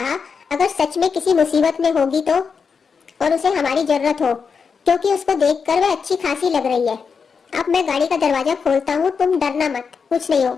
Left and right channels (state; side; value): quieter; right; 5.7 dB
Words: अगर सच में किसी मुसीबत में होगी तो, और उसे हमारी जरूरत हो, क्योंकि उसको देखकर वह अच्छी खासी लग रही है। अब मैं गाड़ी का दरवाजा खोलता हूँ, तुम डरना मत, कुछ नहीं